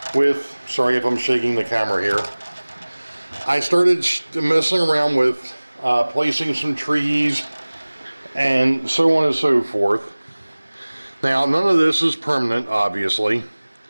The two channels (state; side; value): inverted; both; correlation -1.00